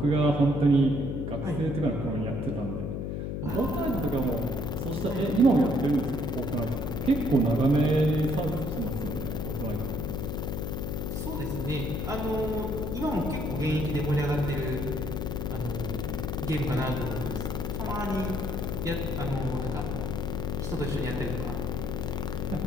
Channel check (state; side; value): noise; left; hum, 3 dB below the sound